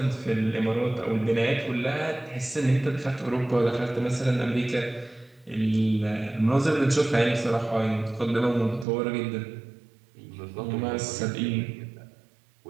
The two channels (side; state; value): left; drops out; at 8.8 s